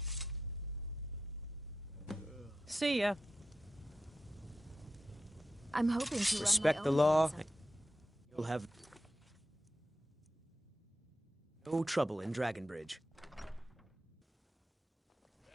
See ya. I'm hoping to respect run the my own law. business. You'll have no trouble in Dragonbridge.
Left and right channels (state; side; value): normal; both; correlation 0.89